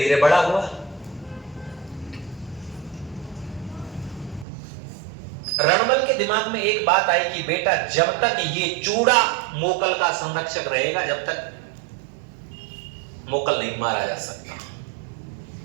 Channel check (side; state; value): left; drops out; at 4.5 s